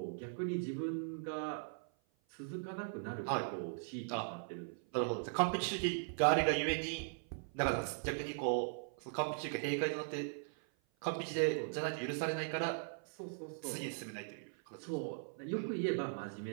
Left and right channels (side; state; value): left; silent; 52 dB below the other